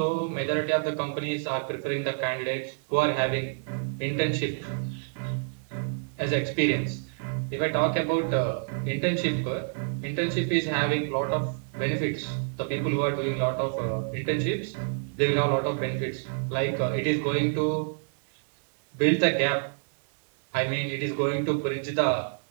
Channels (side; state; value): left; silent; digital silence